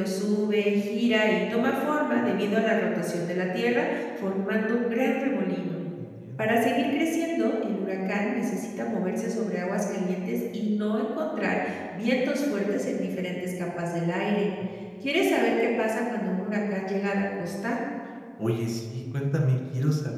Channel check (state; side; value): identical; both; correlation 1.00